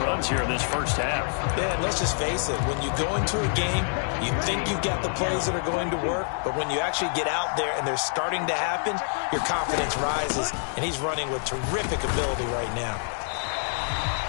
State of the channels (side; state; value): right; silent; 61 dB below the other